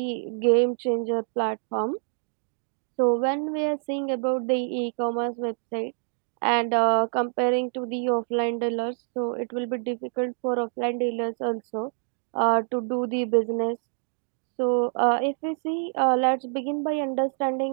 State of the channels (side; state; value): left; silent; 56 dB below the other